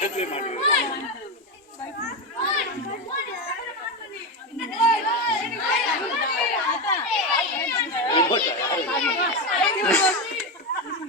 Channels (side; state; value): both; normal; correlation 0.13